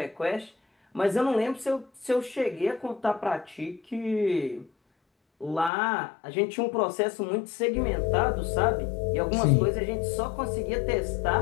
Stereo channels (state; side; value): drops out; right; at 5.7 s